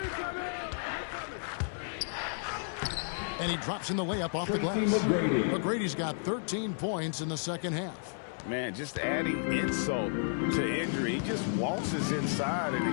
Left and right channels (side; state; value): right; silent; 56 dB below the other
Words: And he drops in the layup off the glass. McGrady's got 13 points in the second half. Man, just adding insult to injury. He just waltzes inside and